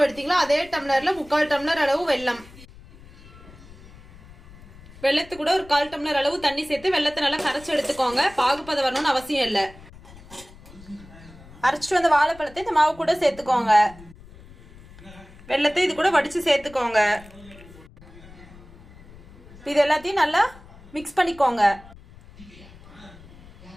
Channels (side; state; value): left; noise; rumble, 21 dB below the sound